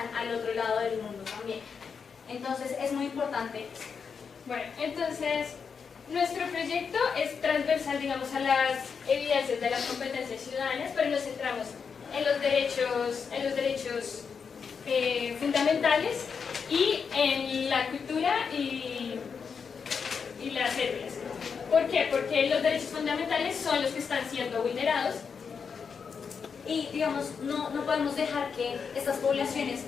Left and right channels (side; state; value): right; quieter; 6.0 dB